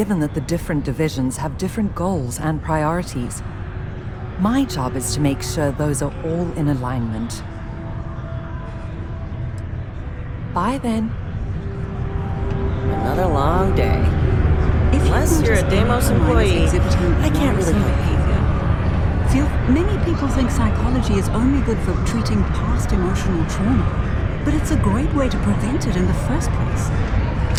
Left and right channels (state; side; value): identical; both; correlation 1.00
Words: that the different divisions have different goals and priorities. My job is to make sure those are all in alignment. Bye then. Another long day. Unless you're a Deimos employee, I can't really help you. Phil, many people think psychology is only good for treating past emotional trauma, but it's a great way to prevent it in the first place.